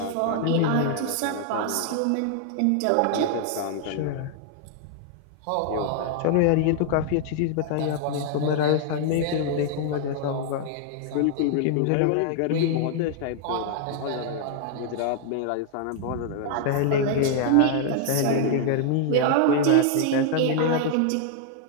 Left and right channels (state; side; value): different; both; correlation 0.00